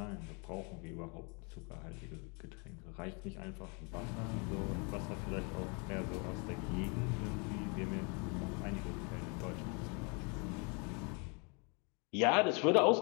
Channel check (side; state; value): right; quieter; 33.5 dB